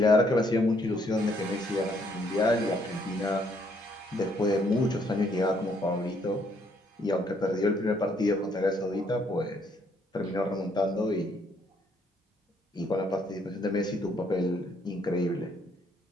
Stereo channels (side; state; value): both; normal; correlation 0.69